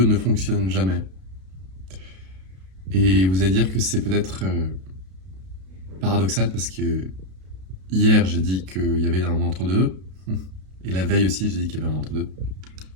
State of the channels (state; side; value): late; left; 32 ms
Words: ne fonctionne jamais? Et vous allez dire que c'est peut-être paradoxal parce que hier j'ai dit qu'il y avait un entre-deux et la veille aussi j'ai dit qu'il y avait un entre-deux.